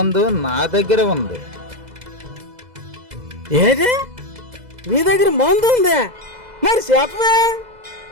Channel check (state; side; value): late; left; 2.0 ms